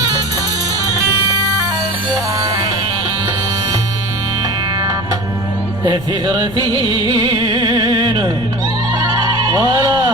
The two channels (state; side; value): noise; left; rumble, 14 dB below the sound